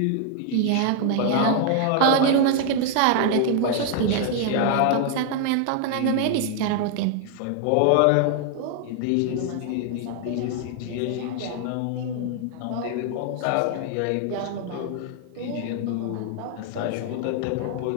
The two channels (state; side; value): different; both; correlation 0.00